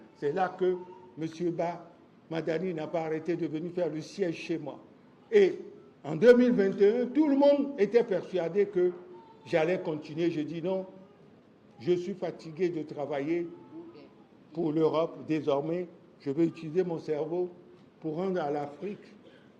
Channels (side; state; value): both; identical; correlation 1.00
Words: C'est là que M. Madani n'a pas arrêté de venir faire le siège chez moi. Et en 2021, tout le monde était persuadé que j'allais continuer. Je dis non, je suis fatigué de travailler pour l'Europe. Désormais, je vais utiliser mon cerveau pour rendre à l'Afrique,